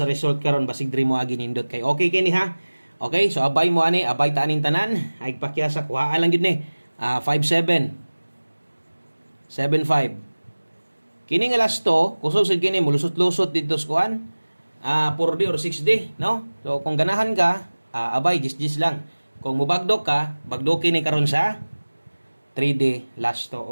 sa result karon basig diri mo agi nindot kay okay kini ha. Okay, so abay mo ani, abay ta aning tanan, ay pakyasa kuha lang gid ni. 57 75 kini nga last to kusog sad kini mulusot-lusot dito sa kuan 4D or 6D, no? So kung ganahan ka abay jis lang, kung mubagdok ka bagdoki ni karon sa 3D lasto.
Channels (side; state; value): both; inverted; correlation -1.00